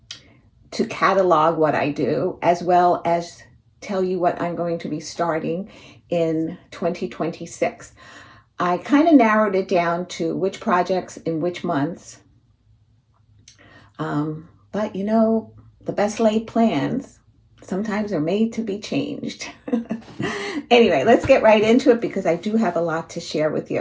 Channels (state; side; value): identical; both; correlation 1.00